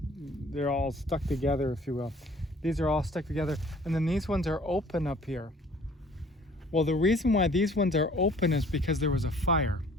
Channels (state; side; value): normal; both; correlation 0.54